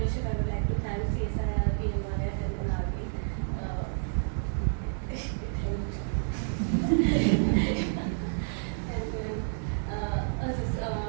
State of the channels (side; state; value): left; silent; digital silence